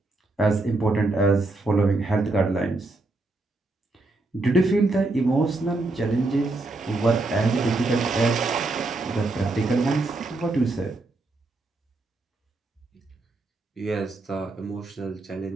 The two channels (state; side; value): quieter; left; 3.1 dB